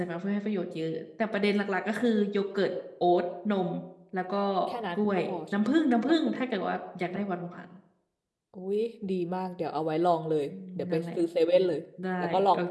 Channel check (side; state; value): both; identical; correlation 1.00